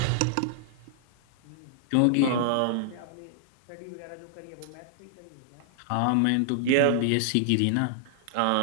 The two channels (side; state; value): both; different; correlation -0.01